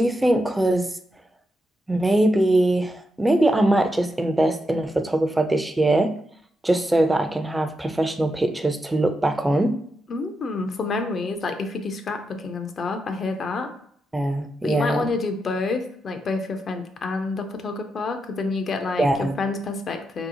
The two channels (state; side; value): normal; both; correlation 0.86